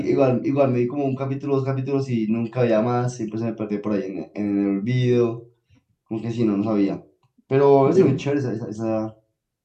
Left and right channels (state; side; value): identical; both; correlation 1.00